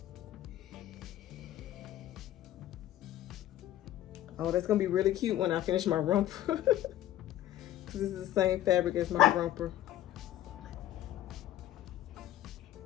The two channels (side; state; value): right; quieter; 13.1 dB